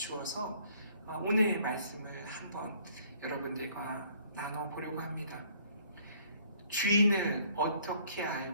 오늘 말씀을 한번 여러분들과 나눠보려고 합니다. 주인을 어떻게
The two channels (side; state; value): both; inverted; correlation -0.60